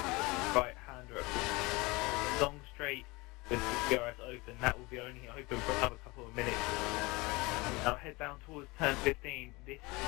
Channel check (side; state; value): right; quieter; 24.0 dB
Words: Right hander at the long straight with the DRS open. That will be only open for another couple of minutes. Now head down towards turn 15. This